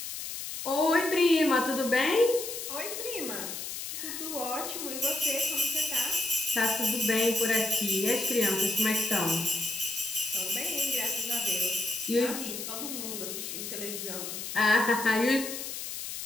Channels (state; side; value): noise; left; hiss, 7 dB below the sound